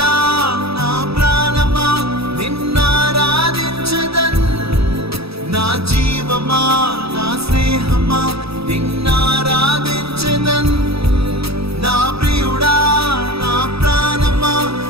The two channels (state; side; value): late; left; 0.77 ms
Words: నా ప్రాణమా నిన్నారాధించదన్, నా జీవమా నా స్నేహమా నిన్నారాధించదన్. నా ప్రియుడా నా ప్రాణమా